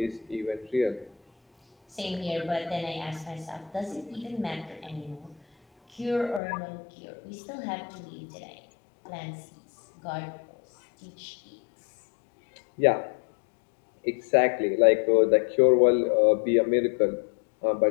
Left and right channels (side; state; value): right; drops out; at 6.4 s